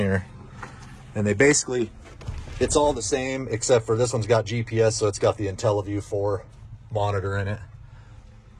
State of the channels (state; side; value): identical; both; correlation 1.00